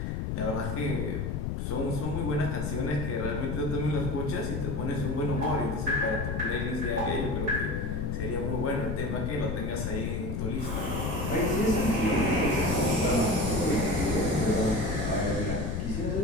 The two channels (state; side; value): noise; left; rumble, 1 dB below the sound